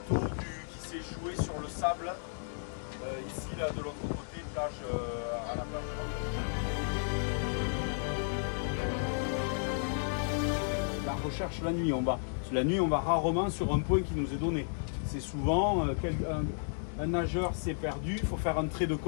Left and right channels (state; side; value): silent; right; digital silence